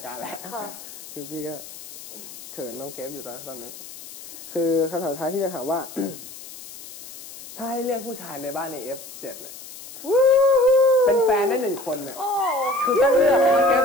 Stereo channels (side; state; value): left; noise; hiss, 15 dB below the sound